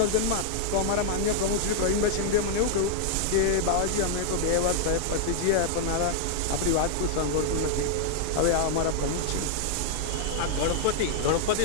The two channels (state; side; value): different; both; correlation -0.01